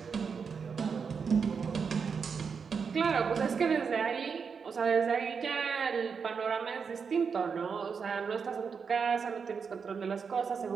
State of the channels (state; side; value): quieter; left; 5.9 dB